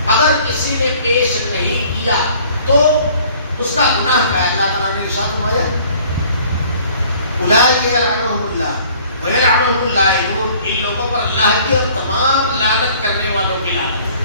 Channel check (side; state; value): both; inverted; correlation -0.54